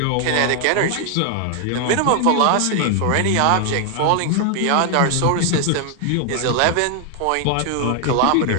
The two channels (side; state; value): both; different; correlation 0.00